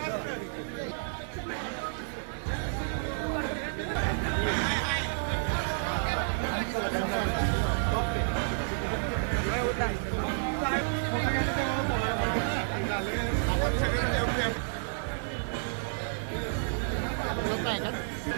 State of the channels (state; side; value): silent; left; 58 dB below the other